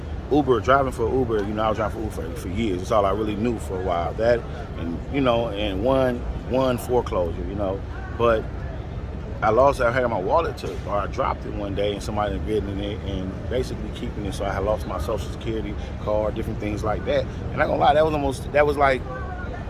driving for Uber, I was driving for Uber for years. That's all I really knew for a while. That and and one foreclosure, but I had my wallet took, or I dropped it one day, and somebody had written it and basically keeping it. So I had lost my social security card, different things like that. And I'm not gonna lie, that was like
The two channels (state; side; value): identical; both; correlation 1.00